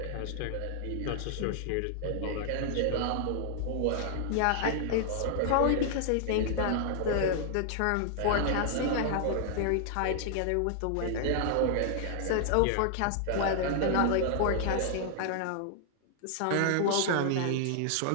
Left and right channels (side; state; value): both; different; correlation -0.01